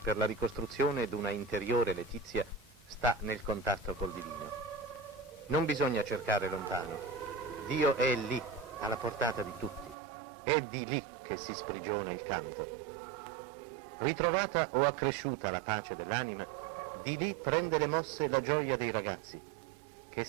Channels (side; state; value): left; drops out; at 10.0 s